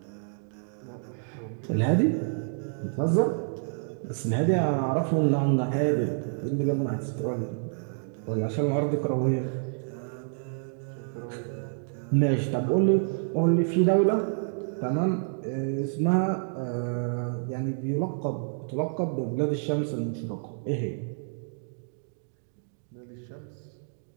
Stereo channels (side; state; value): left; silent; digital silence